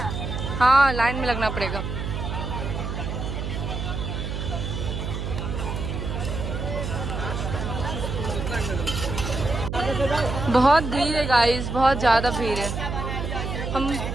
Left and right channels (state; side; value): noise; right; hum, 4 dB below the sound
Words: हाँ, लाइन में लगना पड़ेगा। बहुत भीड़ है गाइस, बहुत ज़्यादा भीड़ है। हम